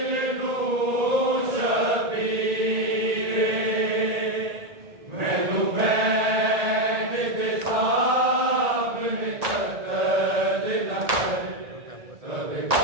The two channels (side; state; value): left; late; 1.7 ms